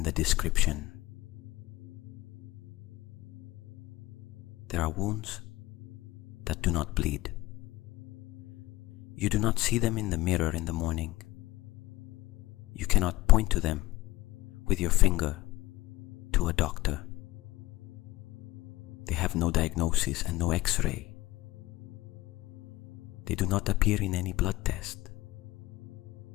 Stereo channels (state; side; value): quieter; right; 18.5 dB